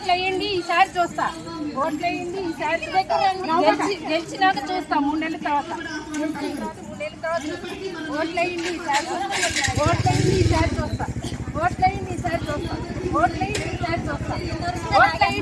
ఓట్లు వేయండి ఈసారి చూస్తా, ఓట్లు వేయండి ఈసారి గెలిచినాక చూస్తా 3 నెలల తర్వాత, ఓట్లు వేయండి ఈసారి, ఓట్లు వేయండి ఈసారి చూస్తా, ఓట్లు వేయండి ఈసారి చూస్తా, ఓట్లు వేయండి ఈసారి చూస్తా, ఓట్లు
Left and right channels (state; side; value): identical; both; correlation 1.00